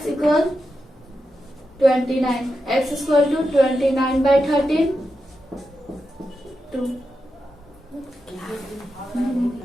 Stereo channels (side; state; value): both; normal; correlation 0.88